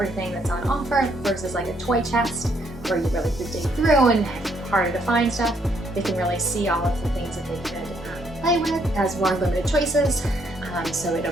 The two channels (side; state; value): both; normal; correlation 0.71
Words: that's on offer versus like a toy chest where you really could dig through and harder to find stuff. They can really see all of the things that they could play with. It has more limited choices, so it